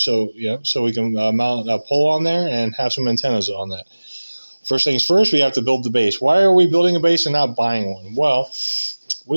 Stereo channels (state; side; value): inverted; both; correlation -1.00